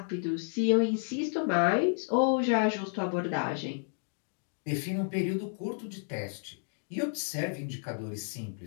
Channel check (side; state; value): right; silent; digital silence